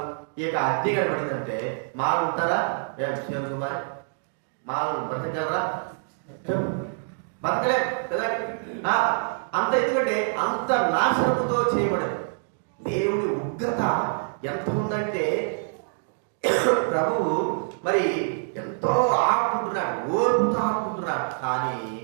ఇక అగ్ని కనబడిందంటే మాలు ఉంటారా? శివన్ కుమార్, మాలు బ్రతకగలరా? బతకలే కదా. అంత ఎందుకంటే అంత నాశనంతో చేయబడింది. దేవుడి ఉగ్రత ఎంత ఉందంటే ప్రభువు మరి ఎంతో ఆపుకుంటున్నాడు, ఓర్పుతో ఆపుకుంటున్నాడు. కానీ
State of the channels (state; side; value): silent; left; digital silence